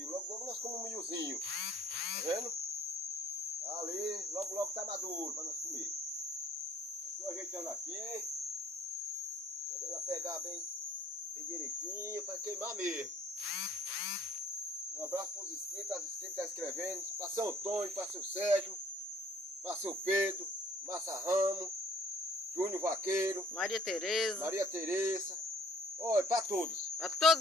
Logo, logo nós comemos um milhozinho. Tá vendo? Tá ali, logo, logo tá maduro pra nós comer. Estou ajeitando aqui. Quando ela pegar bem direitinho, para queimar mesmo. Um abraço para os inscritos, as inscritas que estão escrevendo. Para seu Antônio, para seu Sérgio, para seu Pedro, Massa Ramos, Júnior Vaqueiro, Maria Tereza. Maria Tereza. Olha, para todos. Para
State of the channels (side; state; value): both; normal; correlation 0.57